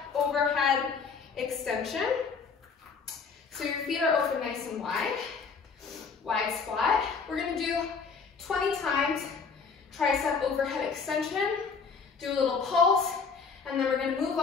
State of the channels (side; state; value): right; quieter; 5.3 dB